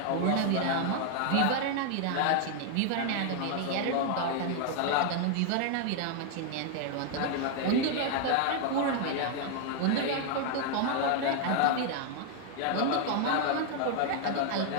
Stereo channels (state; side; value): different; both; correlation 0.00